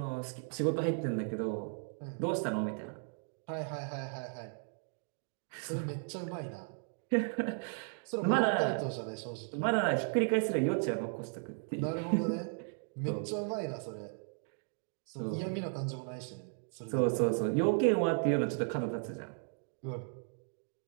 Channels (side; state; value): left; silent; 54 dB below the other